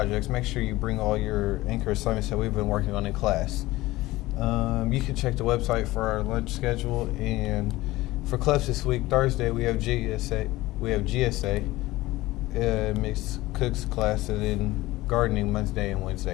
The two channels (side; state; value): right; quieter; 18.4 dB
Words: Make sure you bring all your anchor assignments that we've been working on in class. You can check the website for our lunch schedule. And for clubs this week, Thursday we have GSA, mixed cooks class, and then gardening Monday and